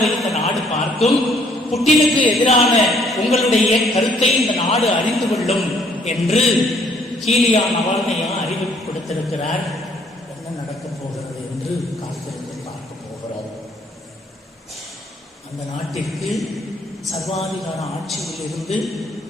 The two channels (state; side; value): normal; both; correlation 0.64